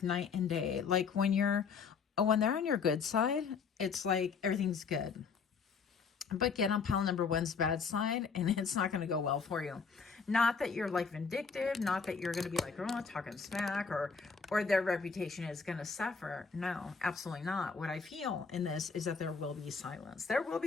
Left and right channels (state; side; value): quieter; right; 5.5 dB